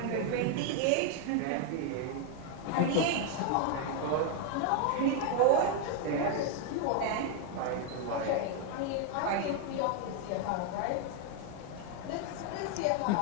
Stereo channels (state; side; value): different; both; correlation 0.01